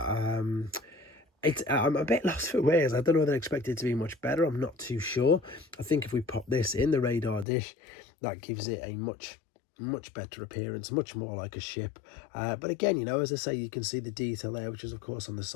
I'm a bit lost for words. I don't know whether I expect it to be much better. I'm not too sure. I think if we pop this in the radar dish, that gives it a much better appearance, much more like a ship. But again, you know, as I say, you can see the detail there, which is of course on the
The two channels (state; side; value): drops out; right; at 7.5 s